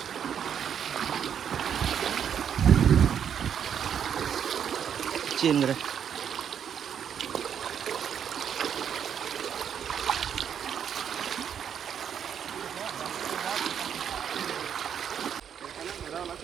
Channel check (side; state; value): left; quieter; 8.3 dB